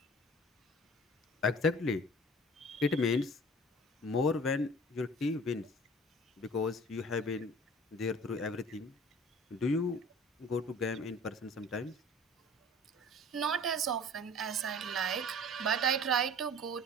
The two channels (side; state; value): both; normal; correlation 0.45